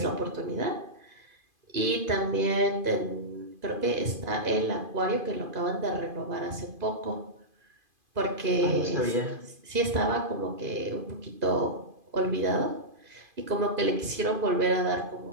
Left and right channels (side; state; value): left; late; 2.5 ms